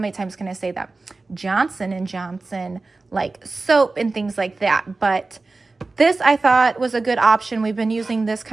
times can I say that? Johnson & Johnson, like soap and things like that. But this I thought was a good option. We've been using this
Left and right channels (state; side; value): quieter; left; 3.5 dB